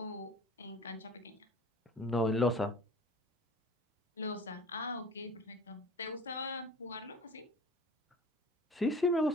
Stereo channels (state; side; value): normal; both; correlation 0.43